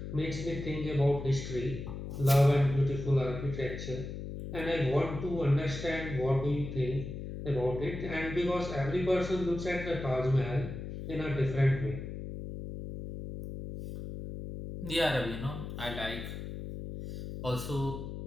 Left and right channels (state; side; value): noise; left; hum, 8 dB below the sound